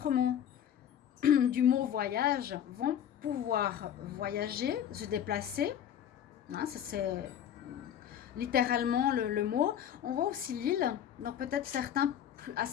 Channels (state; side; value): quieter; right; 9.7 dB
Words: du mot voyage, vont pouvoir voyager, se déplacer. Hein, c'est littéralement le mot. On voit aussi l'île, donc peut-être certains